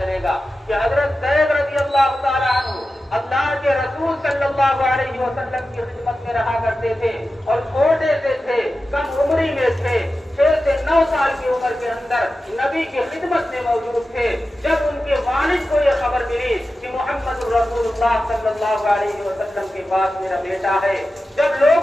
گا کہ حضرت زید رضی اللہ تعالی عنہ اللہ کے رسول صلی اللہ علیہ وسلم کی خدمت میں رہا کرتے تھے اور چھوٹے سے تھے، کم عمری میں تھے، 6 سے 9 سال کی عمر کے اندر نبی کی خدمت میں موجود تھے۔ جب ان کے والد کو یہ خبر ملی کہ محمد رسول اللہ صلی اللہ علیہ وسلم کے پاس میرا بیٹا ہے، جب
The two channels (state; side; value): normal; both; correlation 0.93